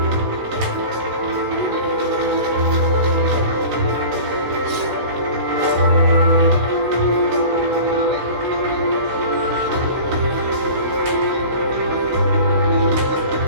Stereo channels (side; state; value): left; late; 16 ms